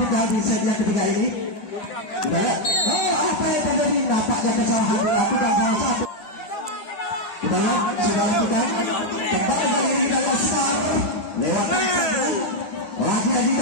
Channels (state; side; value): late; right; 10 ms